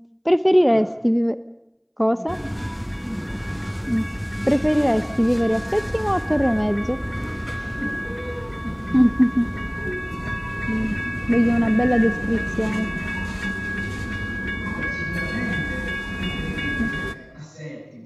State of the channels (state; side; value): identical; both; correlation 1.00